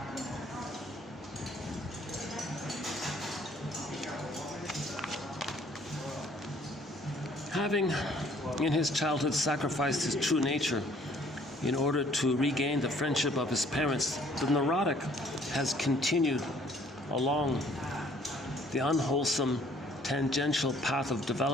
Having in his childhood sacrificed his true nature in order to regain the friendship of his parents, the neurotic has continued along the unwholesome tangential path of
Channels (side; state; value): both; normal; correlation 0.60